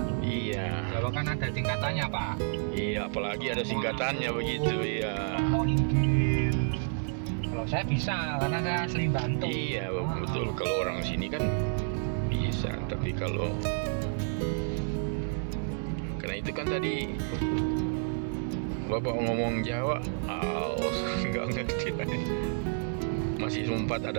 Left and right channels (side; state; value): left; silent; 58 dB below the other